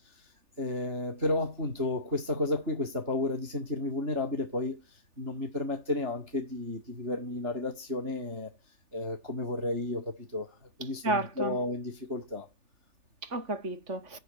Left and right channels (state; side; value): late; left; 3.4 ms